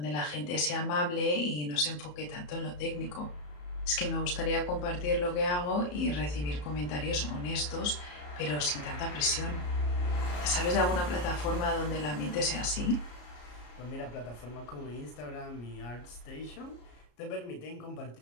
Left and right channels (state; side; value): late; right; 34 ms